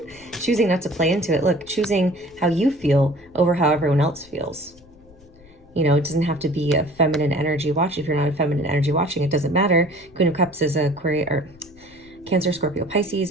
choosing not to play into it. Look, choosing how you feel over how everyone else feels. It doesn't have to be a feminine energy watch. If you're not a feminine energy watching, it doesn't matter. Queen of Cups is a Cancer, Scorpio, Pisces,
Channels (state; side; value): noise; left; rumble, 26 dB below the sound